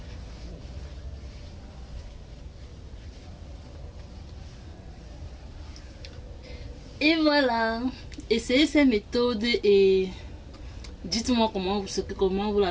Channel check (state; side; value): identical; both; correlation 1.00